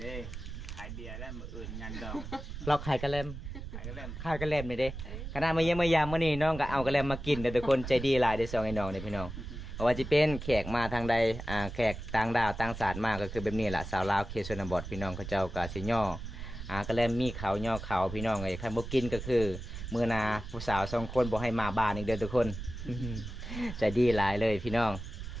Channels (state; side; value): noise; right; rumble, 9 dB below the sound